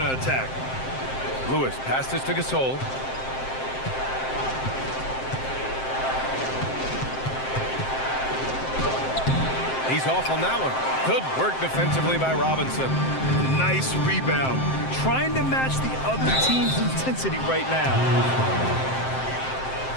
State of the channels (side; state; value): right; late; 7.6 ms